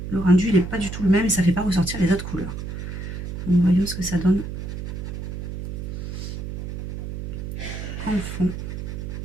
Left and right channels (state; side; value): noise; right; hum, 6 dB below the sound